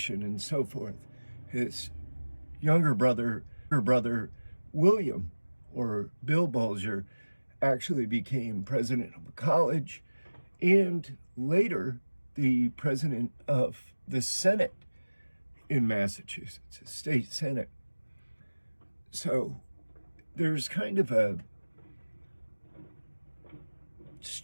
and so forth. His younger brother, William, or Bill Bulger, actually became president of a college and later the president of the Senate in Massachusetts, a state Senate. So there's kind of a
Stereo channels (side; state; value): both; inverted; correlation -1.00